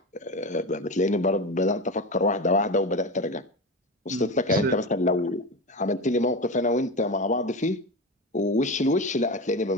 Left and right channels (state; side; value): normal; both; correlation 0.23